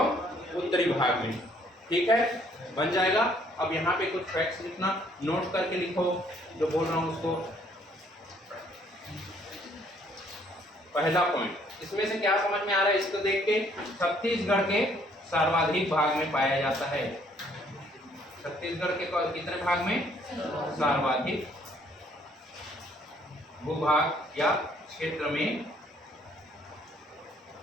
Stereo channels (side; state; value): both; normal; correlation 0.63